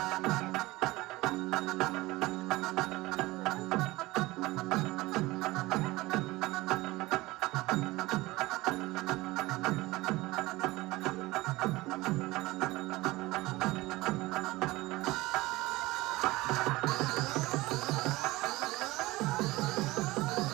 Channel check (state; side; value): quieter; left; 20.0 dB